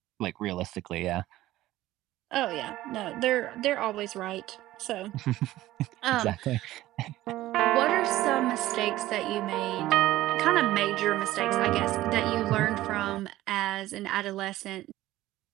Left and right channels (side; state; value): left; quieter; 15.8 dB